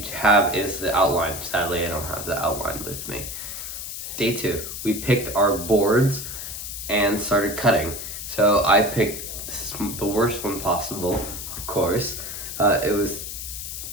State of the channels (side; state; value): left; noise; hiss, 7 dB below the sound